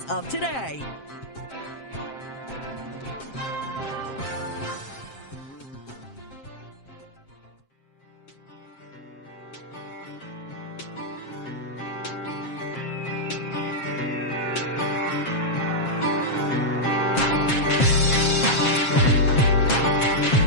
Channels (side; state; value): right; late; 7.5 ms